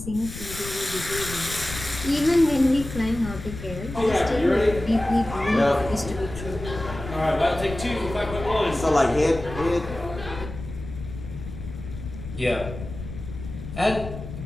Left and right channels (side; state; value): left; noise; rumble, 10 dB below the sound